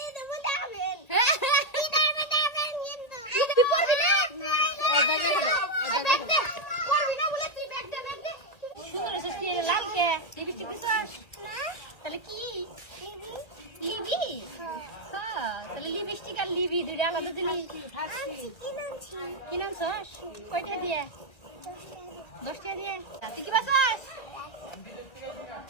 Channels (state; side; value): late; right; 1.8 ms